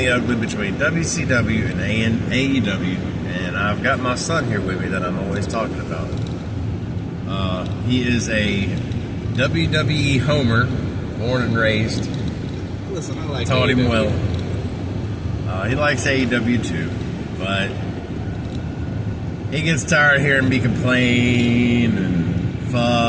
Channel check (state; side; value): identical; both; correlation 1.00